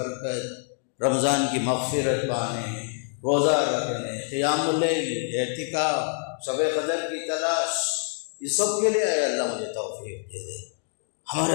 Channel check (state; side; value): silent; right; 61 dB below the other